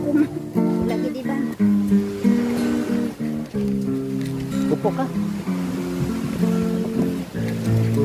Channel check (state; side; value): identical; both; correlation 1.00